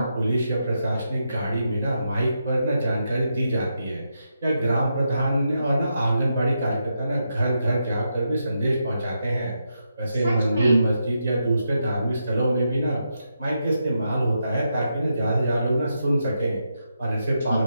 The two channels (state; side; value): inverted; both; correlation -0.84